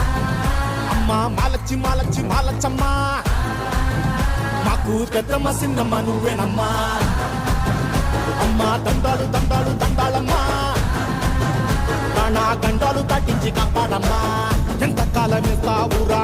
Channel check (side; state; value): both; identical; correlation 1.00